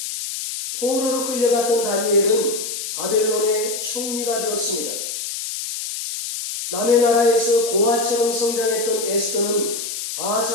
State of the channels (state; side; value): noise; left; hiss, 6 dB below the sound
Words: 포로로 끌려갔던 다니엘은 바벨론의 총리가 되었습니다. 남의 나라에서 고아처럼 성장했던 에스더는